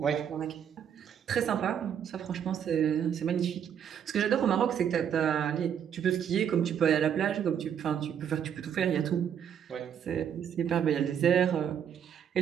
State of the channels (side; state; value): left; quieter; 8.6 dB